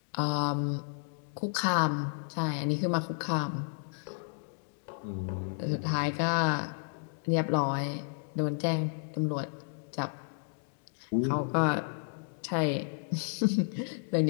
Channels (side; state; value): right; silent; digital silence